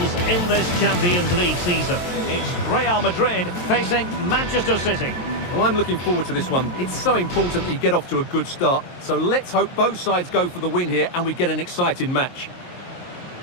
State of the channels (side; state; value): right; late; 23 ms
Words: in this Champions League season. It's Real Madrid facing Manchester City. Well, I'm looking forward to this one. It's so important that you get off to a good start. So let's hope both sides go for the win here and we get an exciting match.